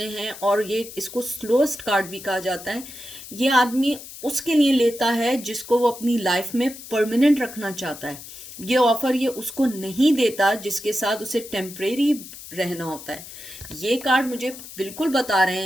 हैं, और ये इसको स्लोएस्ट कार्ड भी कहा जाता है, ये आदमी उसके लिए लेता है जिसको वो अपनी लाइफ में परमानेंट रखना चाहता है। ये ऑफर ये उसको नहीं देता जिसके साथ उसे टेम्परेरी रहना होता है। ये कार्ड मुझे बिल्कुल बता रहे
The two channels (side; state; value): left; noise; hiss, 14 dB below the sound